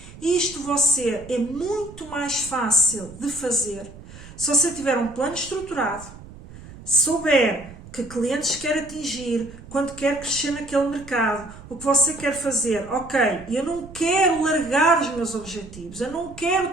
Isto você é muito mais fácil de fazer se você tiver um plano estruturado, souber que clientes quer atingir, quando quer crescer naquele mercado, o que você quer fazer. Ok, eu não quero largar os meus objetivos, eu não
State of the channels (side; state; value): right; noise; rumble, 17 dB below the sound